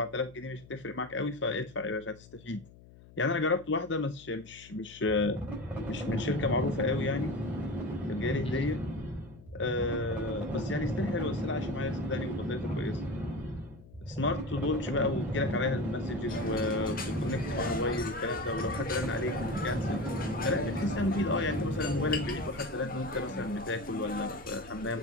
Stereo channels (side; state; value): left; noise; hum, 21 dB below the sound